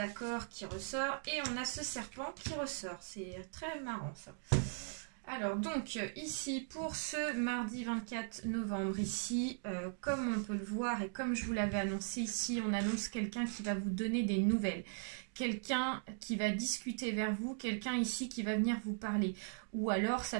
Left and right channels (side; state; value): left; silent; digital silence